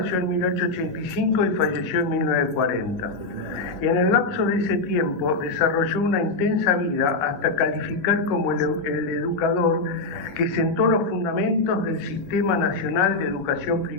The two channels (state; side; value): quieter; right; 3.3 dB